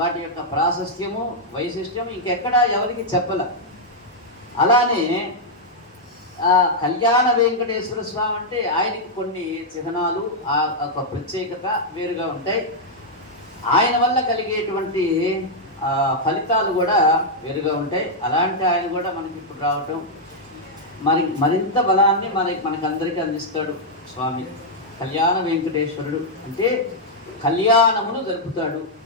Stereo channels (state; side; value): normal; both; correlation -0.04